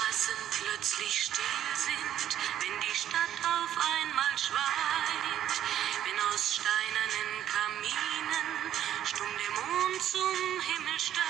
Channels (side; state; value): left; quieter; 11.1 dB